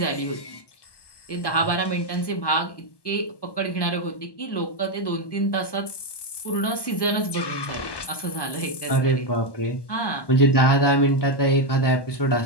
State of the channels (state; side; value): late; right; 1.1 ms